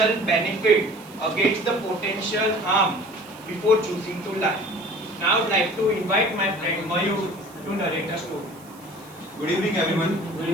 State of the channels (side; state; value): right; noise; hiss, 24 dB below the sound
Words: benefit against the potential harm before choosing to lie. Now I would like to invite my friend Mayur to narrate a story. Good evening everyone.